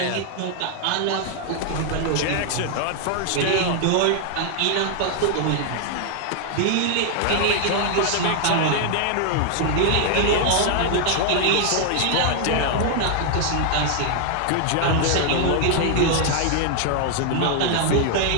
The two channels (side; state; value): both; different; correlation 0.00